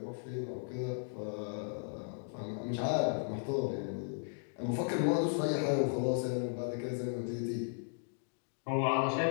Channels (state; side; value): silent; right; digital silence